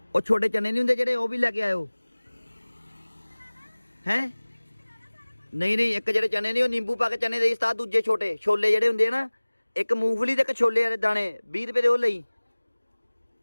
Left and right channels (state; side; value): inverted; both; correlation -1.00